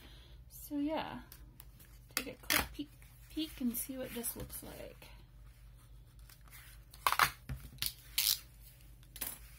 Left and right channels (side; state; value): both; identical; correlation 1.00